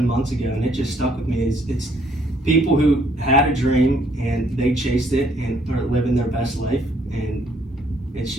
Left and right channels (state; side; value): normal; both; correlation 0.66